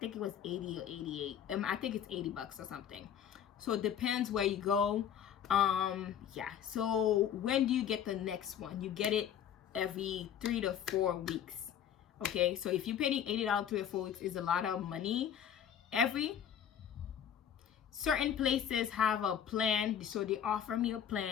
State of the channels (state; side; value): quieter; right; 9.1 dB